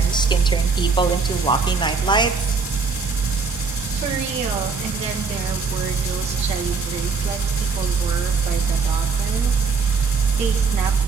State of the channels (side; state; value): left; quieter; 4.8 dB